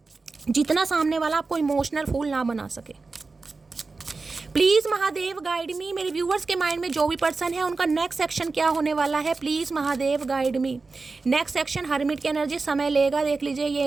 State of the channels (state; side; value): quieter; left; 4.0 dB